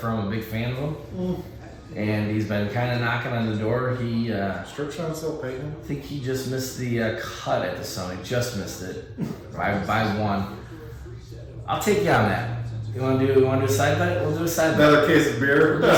I'm a big fan of him, and he's been kind of knocking on the door. He, Strip shot still paying. I think he just missed the cut at the Sony. Just missed it by one. I'll take you on that. You want to do a side bet? We'll do a side bet. Another case of beer.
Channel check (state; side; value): identical; both; correlation 1.00